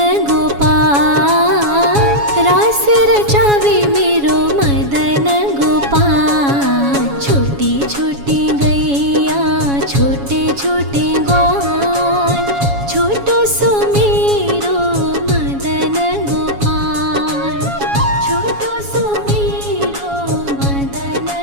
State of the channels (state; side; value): late; left; 7.2 ms